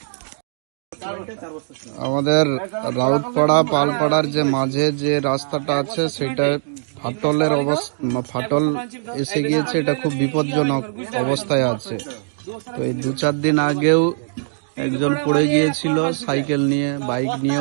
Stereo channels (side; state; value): left; silent; digital silence